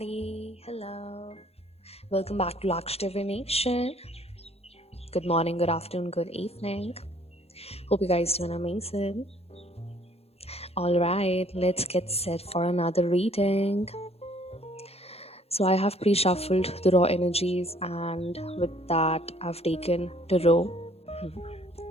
Hello. Welcome back to Laksh Divination. Good morning, good afternoon, good evening. Hope you guys doing amazing. All right, let's get set for another reading. So I have pre-shuffled the raw energies, and with that, I've taken tarot.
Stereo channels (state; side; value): late; right; 0.29 ms